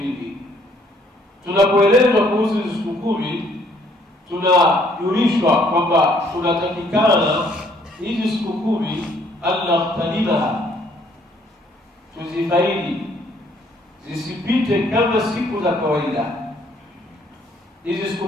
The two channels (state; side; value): normal; both; correlation 0.64